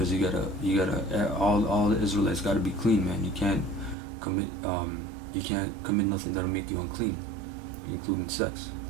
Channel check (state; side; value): drops out; left; at 4.0 s